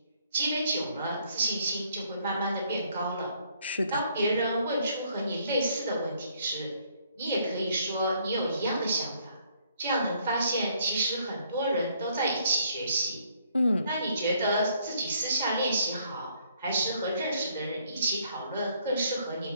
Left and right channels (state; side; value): inverted; both; correlation -0.67